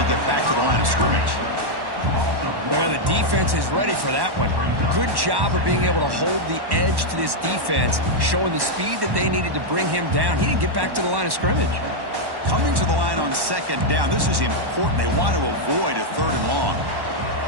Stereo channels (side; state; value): left; late; 1.1 ms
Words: get back to the line of scrimmage. Well, the defense is ready for that one. Good job of being able to hold the edge to this defense, showing the speed that they needed to bring him down. He didn't get back to the line of scrimmage. Coming to the line on second down. This is important. They want to avoid a third and long.